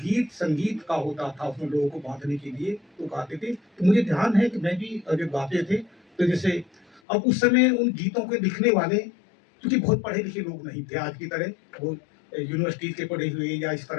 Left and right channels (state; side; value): drops out; right; at 7.0 s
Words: संगीत का होता था, उसमें लोगों को बांधने के लिए तो गाते थे। तो मुझे ध्यान है कि मैं भी जब गाते थे, तो जैसे अब उस समय उन गीतों के लिखने वाले क्योंकि बहुत पढ़े लिखे लोग नहीं थे आज की तरह, वो यूनिवर्सिटी के पढ़े हुए या इस